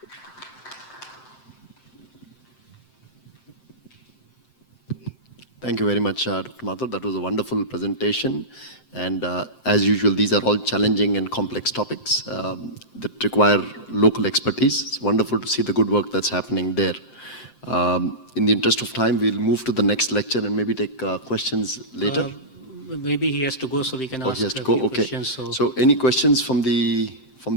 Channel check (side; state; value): right; late; 7.7 ms